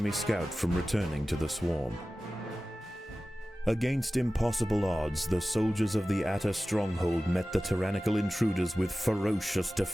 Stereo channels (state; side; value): normal; both; correlation 0.96